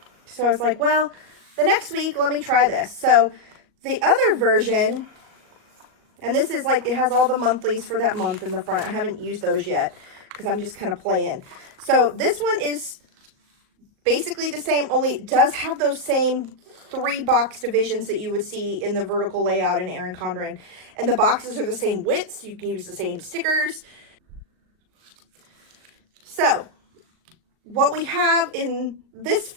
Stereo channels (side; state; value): left; late; 38 ms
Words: So I was like, well, the next week, let me try this. So the other version, and this is like, it has all the monthlies for that month in the front. I haven't used those yet because I'm just kind of playing. So this one is basically the same, only it does have those same 3 box divisions that you would see in the vertical layout in Erin Condren. And the boxes are the same widths. You can use the same stickers. So what we have in this